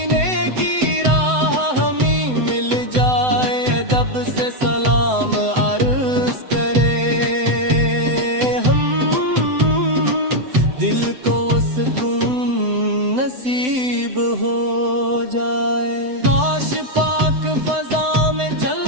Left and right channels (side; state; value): left; late; 7.9 ms